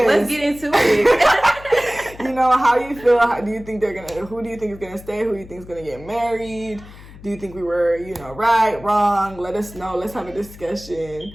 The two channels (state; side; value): noise; left; hum, 18 dB below the sound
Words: Let's get into it. How you feel? Who do you think is gonna stay? Who do you think is gonna get married? Do you think we were, right, wrong? Let us know. Let's have a